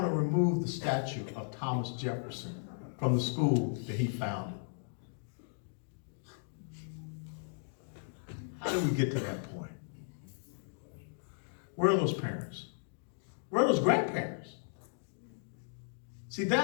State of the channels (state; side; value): silent; right; digital silence